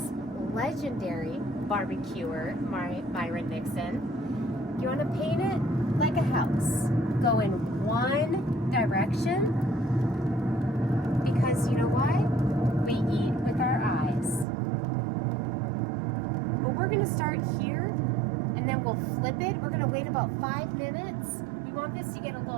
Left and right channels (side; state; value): left; drops out; at 14.5 s